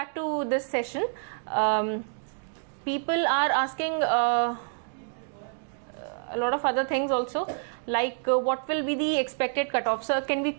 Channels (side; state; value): left; silent; digital silence